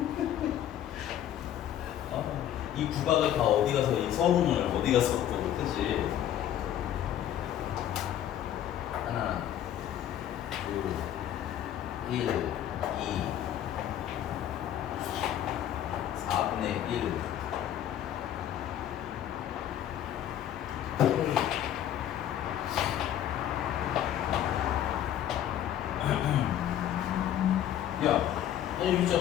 이 구박을 다 어디 가서 이 서문을 어디 가서 또 그치? 하나, 둘, 1, 2, 4분의 1. 야, 너 여기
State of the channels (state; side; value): quieter; right; 11.1 dB